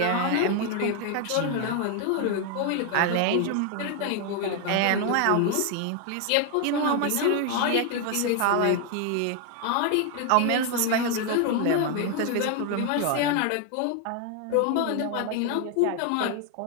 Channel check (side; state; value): both; different; correlation 0.00